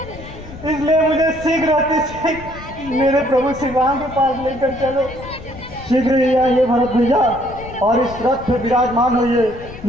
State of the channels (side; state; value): left; noise; rumble, 15 dB below the sound